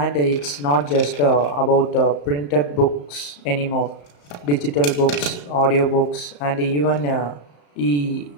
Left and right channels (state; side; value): late; right; 34 ms